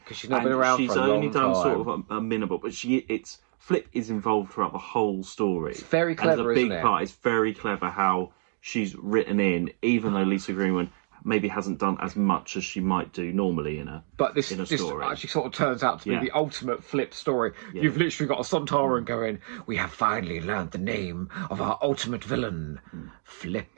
she's not been around for a long time. She's only done sort of a minimal, but Flip is involved throughout the whole story. It's very clever, isn't it? It's a big part. It's very clever how she's written in, even though Lisa Greenwood maybe hasn't done as much as she might do normally in a story. This actually sort of turns out to be the ultimate Flip story. Yeah. You've literally got a Sontaran going, we have finally learned the name of our ultimate villain,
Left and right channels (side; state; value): left; silent; 60 dB below the other